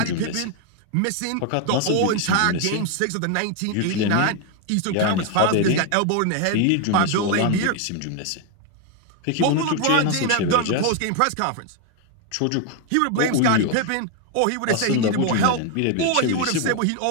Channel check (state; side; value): different; both; correlation 0.01